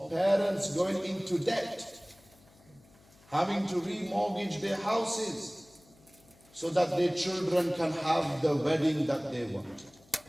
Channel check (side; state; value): left; noise; hum, 28 dB below the sound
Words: parents going into debt, having to remortgage their houses so that their children can have the wedding that they want.